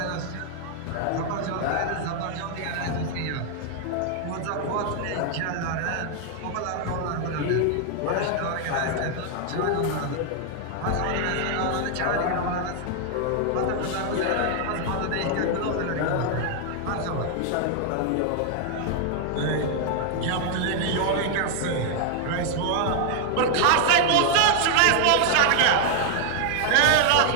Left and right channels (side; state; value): both; different; correlation 0.00